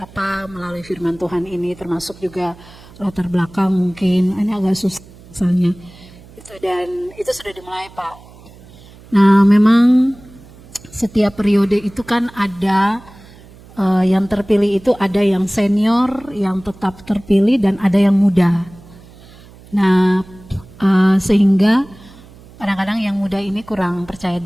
melalui firman Tuhan ini, termasuk juga latar belakang mungkin ini agak susah misalnya itu, dan itu sudah dimulai Pak. Nah, memang setiap periode itu kan ada yang terpilih itu ada yang senior, yang tetap terpilih, dan ada yang muda. Nah, sehingga kadang-kadang yang muda ini kurang percaya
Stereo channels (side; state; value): right; noise; hum, 22 dB below the sound